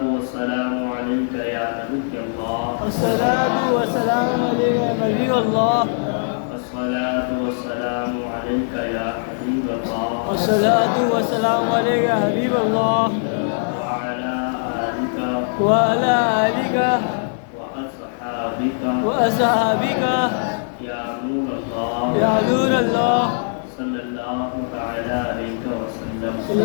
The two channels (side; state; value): right; silent; 65 dB below the other